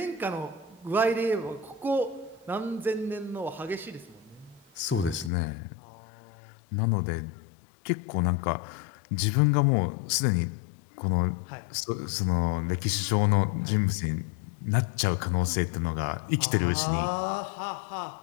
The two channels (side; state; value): right; drops out; at 5.3 s